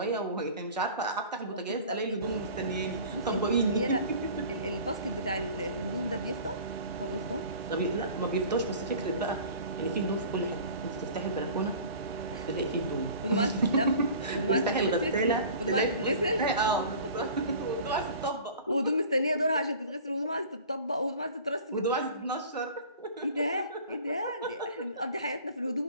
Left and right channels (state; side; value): inverted; both; correlation -0.42